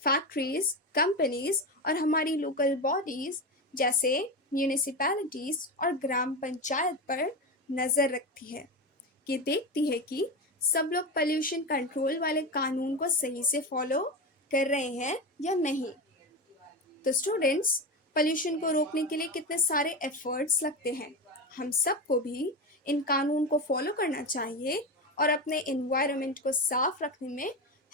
फैक्ट्रीज, कंपनीज और हमारी लोकल बॉडीज जैसे म्यूनिसिपैलिटीज और ग्राम पंचायत पर नज़र रखती है। ये देखती है कि सब लोग पोल्यूशन कंट्रोल वाले कानून को सही से फॉलो कर रहे हैं या नहीं। तो स्टूडेंट्स, पोल्यूशन को रोकने के लिए कितने सारे एफर्ट्स लगते हैं। हम सबको भी इन कानून को फॉलो करना चाहिए और अपने एनवायरनमेंट को साफ रखने में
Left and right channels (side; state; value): both; normal; correlation 0.20